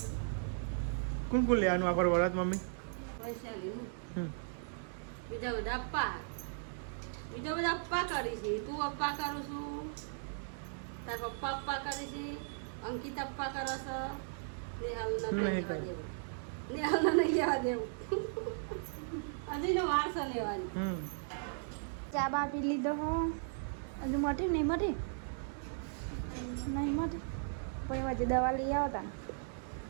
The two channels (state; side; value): silent; left; digital silence